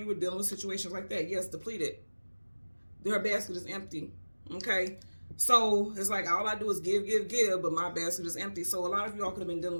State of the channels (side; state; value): both; inverted; correlation -1.00